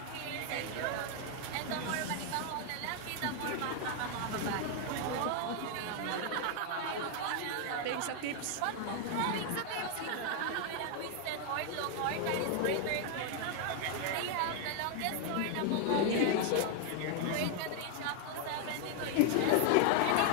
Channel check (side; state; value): both; different; correlation 0.00